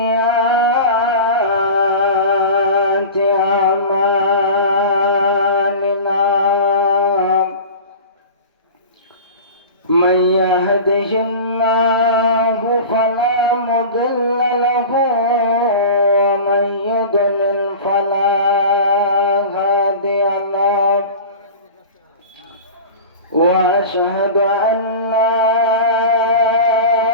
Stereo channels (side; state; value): both; inverted; correlation -0.33